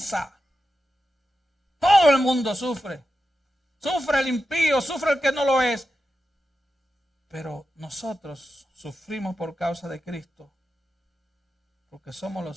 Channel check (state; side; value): normal; both; correlation 0.90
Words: Todo el mundo sufre. Sufre el impío, sufre el que no lo es. Pero nosotros sufrimos por causa de Cristo, porque somos